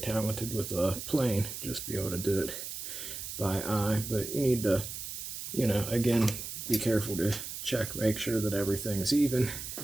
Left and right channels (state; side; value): noise; right; hiss, 7 dB below the sound